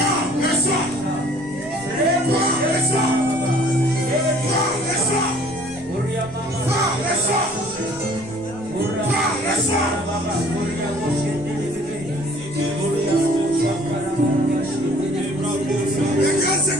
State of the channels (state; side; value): noise; left; rumble, 23 dB below the sound